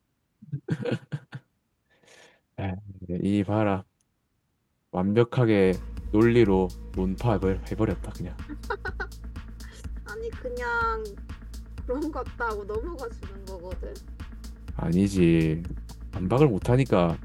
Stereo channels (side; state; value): both; identical; correlation 1.00